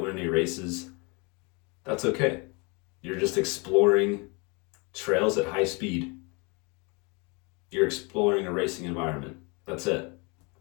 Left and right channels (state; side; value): quieter; right; 30.2 dB